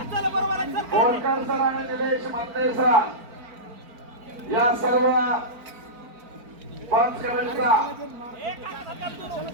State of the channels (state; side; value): late; left; 4.4 ms